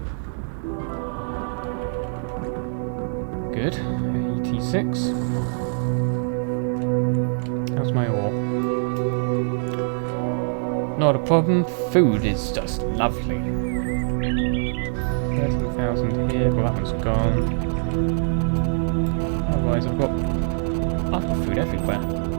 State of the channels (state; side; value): silent; left; digital silence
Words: Good. 86. How's my ore? Not a problem. Food is just lovely. 13,000 here. Well, that one's gone. Otherwise, I've got lots of food everywhere.